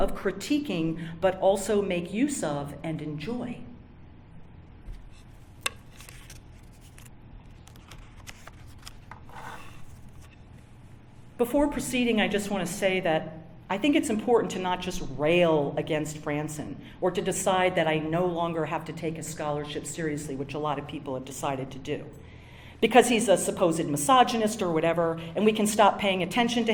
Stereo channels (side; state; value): both; identical; correlation 1.00